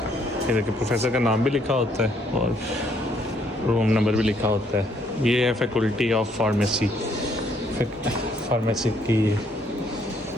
ये देखिए प्रोफेसर का नाम भी लिखा होता है और रूम नंबर भी लिखा होता है। ये है फैकल्टी ऑफ फार्मेसी, फार्मेसी की।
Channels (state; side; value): normal; both; correlation 0.68